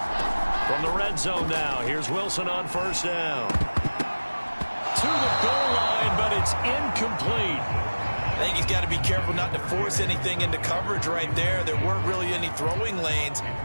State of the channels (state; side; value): inverted; both; correlation -1.00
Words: From the red zone now, here's Wilson on first down. To the goal line, but it's incomplete. I think he's got to be careful not to force anything into coverage right there. There weren't really any throwing lanes,